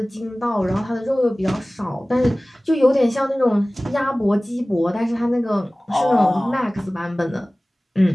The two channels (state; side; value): normal; both; correlation 0.98